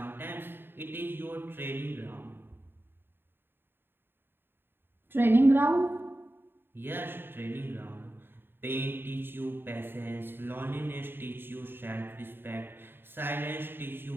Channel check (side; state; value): left; late; 0.10 ms